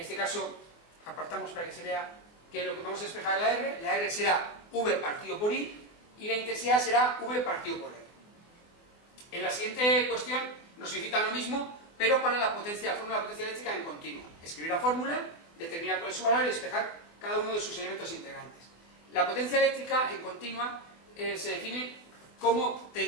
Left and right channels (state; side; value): late; right; 24 ms